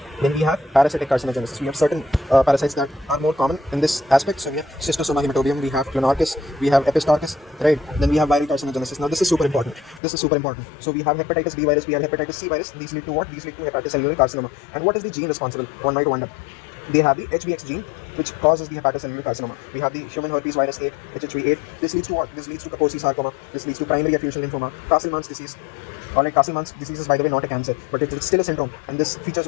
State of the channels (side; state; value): right; drops out; at 10.0 s